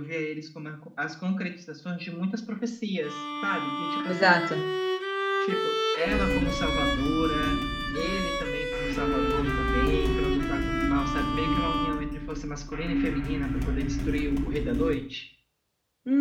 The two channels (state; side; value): identical; both; correlation 1.00